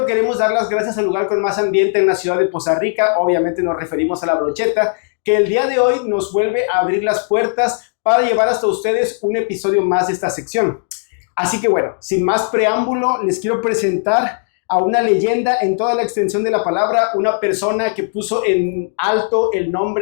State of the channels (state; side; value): silent; right; 68 dB below the other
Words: queremos dar las gracias al lugar con más ambiente en la ciudad de Poza Rica. Obviamente nos referimos a La Brocheta, que el día de hoy nos vuelve a abrir las puertas para llevar hasta ustedes un episodio más de esta sección. Así que bueno, sin más preámbulo, les quiero presentar a una leyenda en toda la extensión de la palabra, una persona que puso en alto el